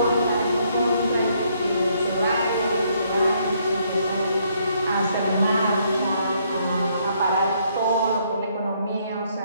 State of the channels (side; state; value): both; inverted; correlation -0.70